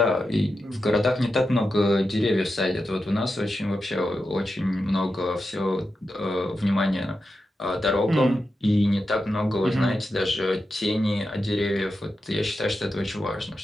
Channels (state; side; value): normal; both; correlation 0.89